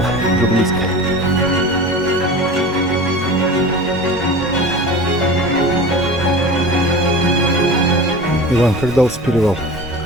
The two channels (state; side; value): normal; both; correlation 0.34